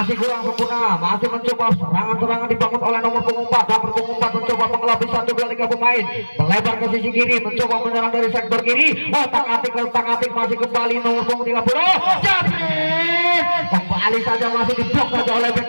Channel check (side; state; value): both; inverted; correlation -1.00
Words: kurang sempurna. Masih mencoba serangan dibangun oleh nomor punggung 4. Nomor punggung 4 mencoba mengelabui 1, 2, 3 pemain. Melebar ke sisi kiri, mencoba menyerang dari sektor kiri. Otak-atik masih kembali nomor punggung 30. Jabrik. Kembali saja masih diblok saja oleh